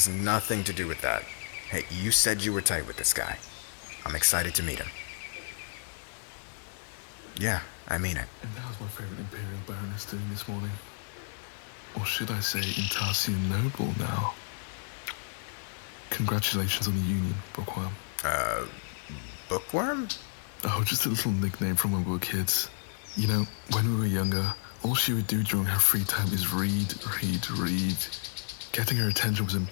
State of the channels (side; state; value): right; silent; digital silence